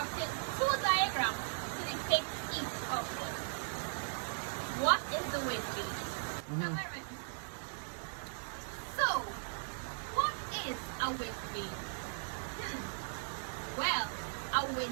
two diagrams to depict each of them. What is the wind gauge? So, what is a wind vane? Well, a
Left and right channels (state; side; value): silent; left; 53 dB below the other